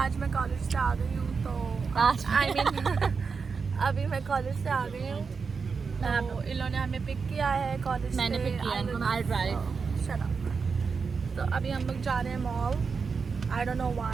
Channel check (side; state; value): left; quieter; 5.2 dB